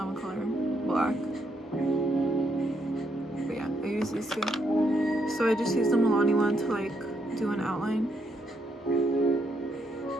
a color, black, but yeah, I use these 2. So I just use the Milani one to like do an outline.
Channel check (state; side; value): normal; both; correlation 0.75